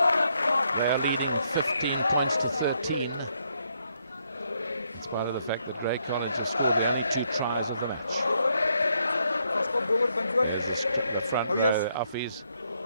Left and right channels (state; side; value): inverted; both; correlation -0.74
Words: They're leading 15 points to 13. In spite of the fact that Grey College has scored the only 2 tries of the match. There's the front row, Affies,